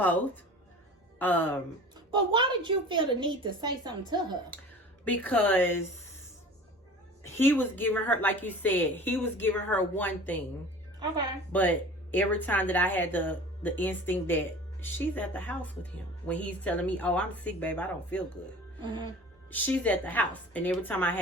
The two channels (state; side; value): normal; both; correlation 0.40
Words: But why did you feel the need to say something to her? Because he was giving her, like you said, he was giving her one thing. Okay. But every time that I had the instinct that she's at the house with him, when he's telling me, oh, I'm sick, babe, I don't feel good. Mm-hmm. She's at the house. And every time I